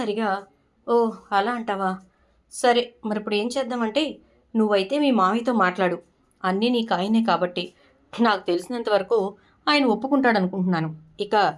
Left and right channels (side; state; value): both; identical; correlation 1.00